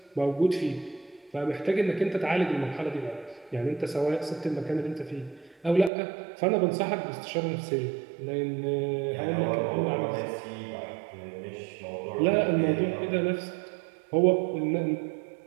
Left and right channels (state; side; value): drops out; left; at 5.9 s